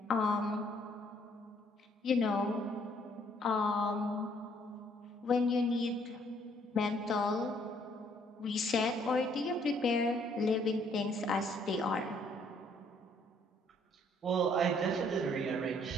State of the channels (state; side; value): normal; both; correlation 0.65